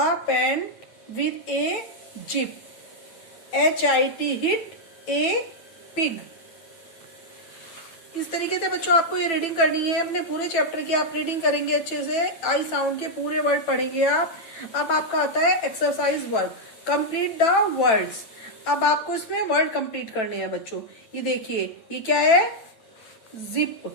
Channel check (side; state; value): right; late; 9.1 ms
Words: pant with a zip, HIT hit a pig। इस तरीके से बच्चों आपको ये रीडिंग करनी है। अपने पूरे चैप्टर की आप रीडिंग करेंगे अच्छे से। आई साउंड के पूरे वर्ड पढ़ेंगे आप। अब आपका आता है exercise work, complete the words. अब आपको इसमें वर्ड कंप्लीट करने हैं बच्चों। ये देखिए, ये क्या है? जिप।